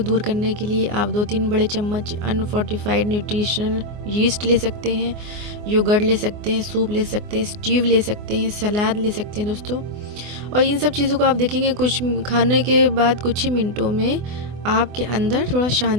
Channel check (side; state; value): left; late; 24 ms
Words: करने के लिए आप 2-3 बड़े चम्मच अनफोर्टिफाइड न्यूट्रिशनल यीस्ट ले सकते हैं, योगर्ट ले सकते हैं, सूप ले सकते हैं, स्टीव ले सकते हैं, सलाद ले सकते हैं दोस्तों। और इन सब चीज़ों को आप देखेंगे कुछ खाने के बाद कुछ ही मिनटों में आपके अंदर थोड़ा